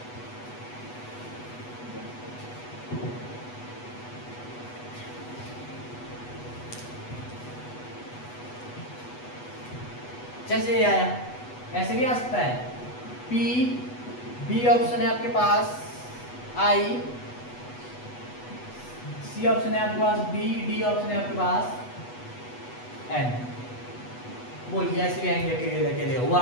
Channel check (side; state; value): right; late; 8.1 ms